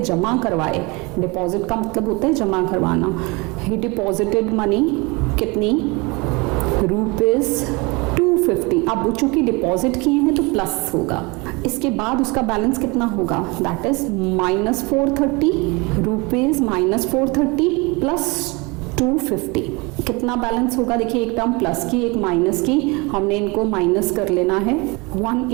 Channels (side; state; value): left; quieter; 27.0 dB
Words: जमा करवाए? डिपॉजिट का मतलब होता है जमा करवाना। ही डिपॉजिटेड मनी कितनी? रुपीज 250। अब चूंकि डिपॉजिट किए हैं तो प्लस होगा। इसके बाद उसका बैलेंस कितना होगा? That is -430 rupees -430 plus 250। कितना बैलेंस होगा? देखिए, एक टर्म प्लस की, एक माइनस की, हमने इनको माइनस कर लेना है।